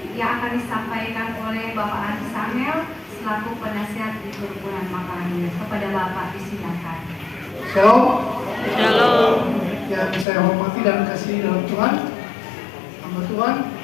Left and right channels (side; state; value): right; drops out; at 10.2 s